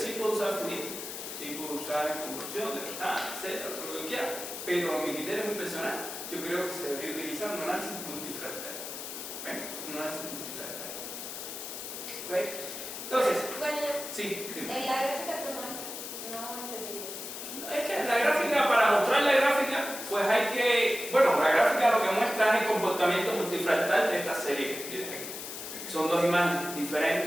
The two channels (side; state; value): left; noise; hiss, 8 dB below the sound